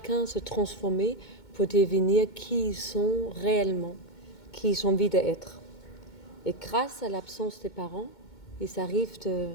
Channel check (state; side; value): late; right; 2.2 ms